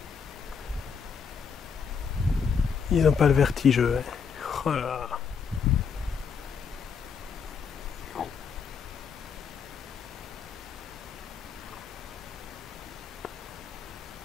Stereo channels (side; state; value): right; quieter; 6.2 dB